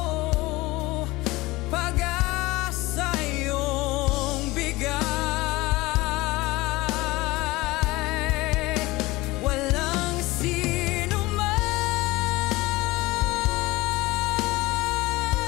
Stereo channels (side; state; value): right; quieter; 20.6 dB